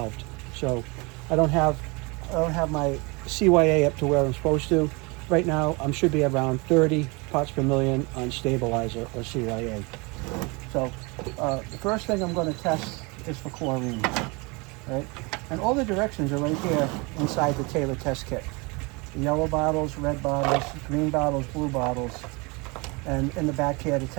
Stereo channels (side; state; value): left; quieter; 28.0 dB